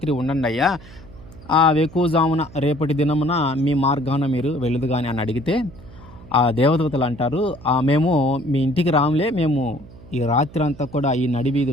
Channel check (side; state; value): right; noise; hum, 20 dB below the sound